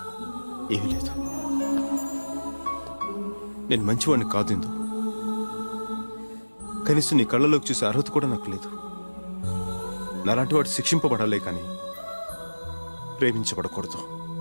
ఏమీ లేదు. నేను మంచివాడిని కాదు ఇందు. కనీసం నీ కళ్ళలోకి చూసే అర్హత కూడా నాకు లేదు. నాలాంటి వాడు శిక్షింపబడాలే కానీ ప్రేమించబడకూడదు.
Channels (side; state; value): both; inverted; correlation -1.00